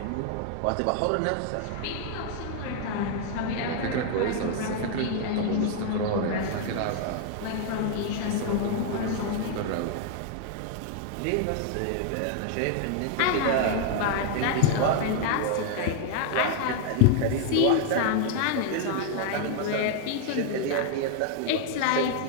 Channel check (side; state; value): both; different; correlation 0.00